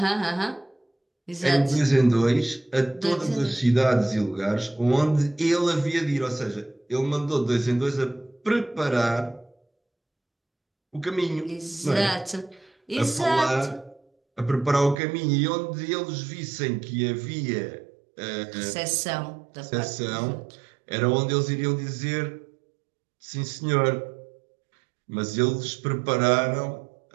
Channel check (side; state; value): left; drops out; at 15.0 s